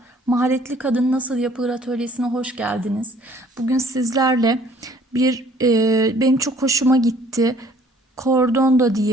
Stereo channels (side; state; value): both; normal; correlation 0.57